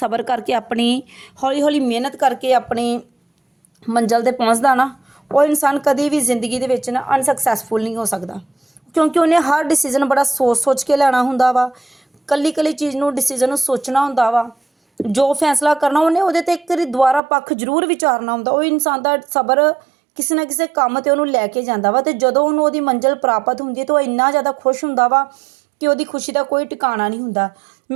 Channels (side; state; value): left; drops out; at 17.2 s